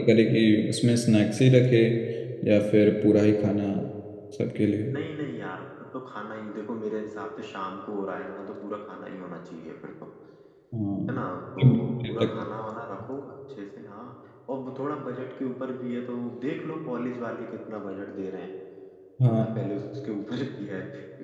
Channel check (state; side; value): identical; both; correlation 1.00